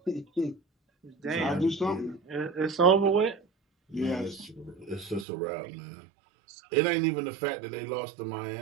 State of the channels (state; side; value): drops out; left; at 5.2 s